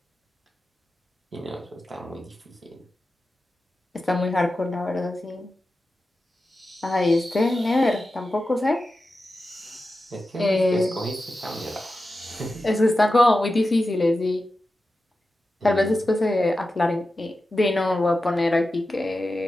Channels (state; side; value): normal; both; correlation 0.92